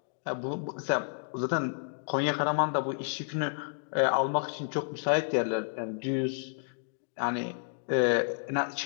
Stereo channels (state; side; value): silent; right; digital silence